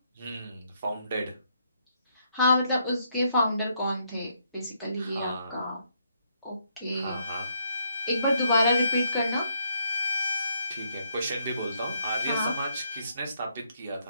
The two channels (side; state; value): both; inverted; correlation -0.74